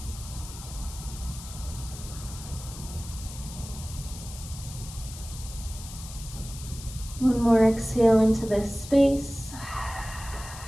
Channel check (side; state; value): left; noise; hiss, 14 dB below the sound